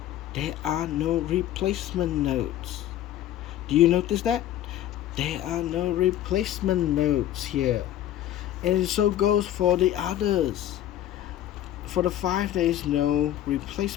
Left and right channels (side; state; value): right; quieter; 12.4 dB